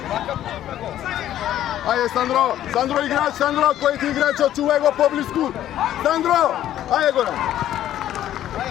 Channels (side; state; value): right; quieter; 12.2 dB